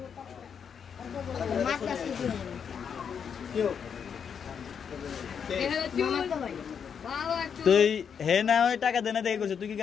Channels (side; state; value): right; quieter; 7.2 dB